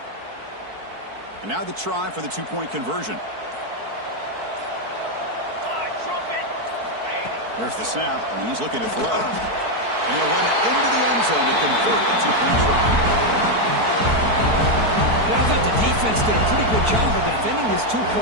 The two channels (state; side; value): late; left; 4.6 ms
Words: And now the try for the two-point conversion. There's the snap, and he's looking to throw. And he'll run it into the end zone to convert the two-point try. Well, I thought the defense did a pretty good job of defending this